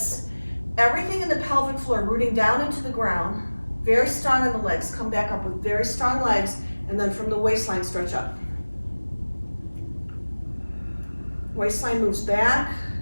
everything in the pelvic floor, rooting down into the ground. Very strong in the legs. Come back up with very strong legs, and then from the waistline, stretch up. Waistline moves back.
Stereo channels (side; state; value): both; inverted; correlation -1.00